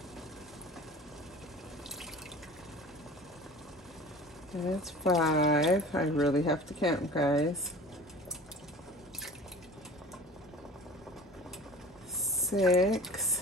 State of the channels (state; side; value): normal; both; correlation 0.40